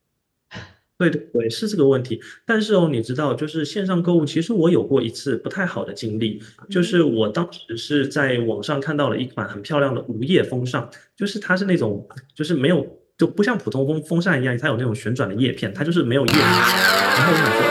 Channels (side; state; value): both; identical; correlation 1.00